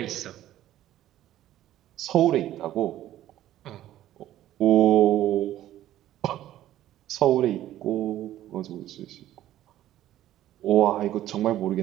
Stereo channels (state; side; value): quieter; left; 13.3 dB